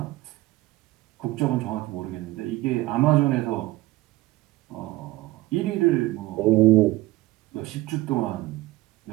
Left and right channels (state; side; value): quieter; left; 18.2 dB